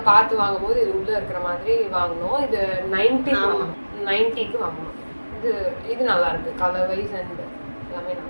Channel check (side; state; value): both; inverted; correlation -1.00